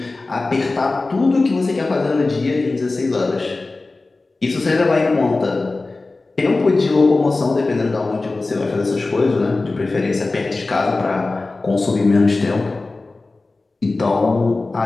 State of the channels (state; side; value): quieter; right; 3.4 dB